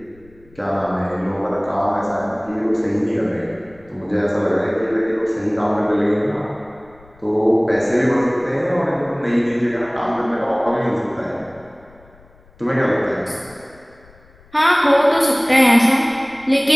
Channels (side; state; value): left; noise; rumble, 27 dB below the sound